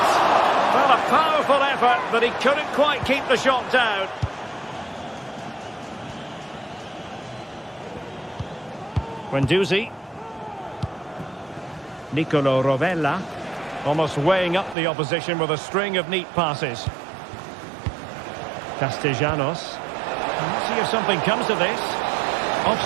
Well, a powerful effort, but he couldn't quite keep the shot down. Guendouzi. Nicolo Rovella. Almost weighing up the opposition with a string of neat passes. Castellanos. Let's see if something comes of this.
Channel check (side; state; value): left; drops out; at 14.8 s